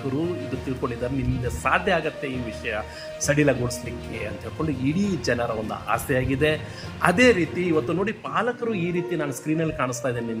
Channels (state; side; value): identical; both; correlation 1.00